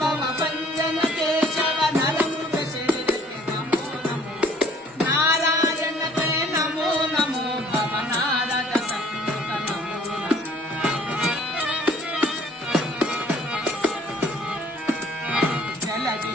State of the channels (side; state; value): both; normal; correlation 0.56